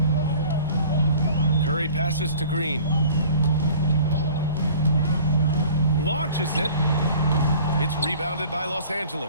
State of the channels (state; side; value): inverted; both; correlation -0.48